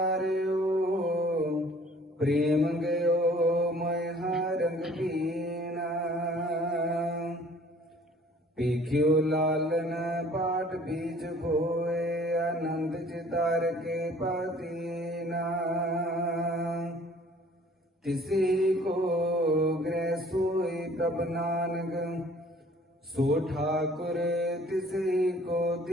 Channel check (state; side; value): normal; both; correlation 0.54